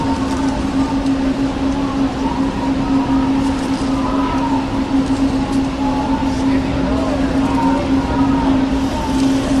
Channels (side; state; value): both; identical; correlation 1.00